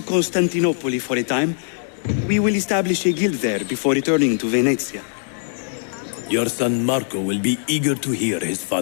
Constantinople for a time. We will establish a guild there before returning to Venezia. Your son Marco will be eager to hear his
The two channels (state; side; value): silent; right; digital silence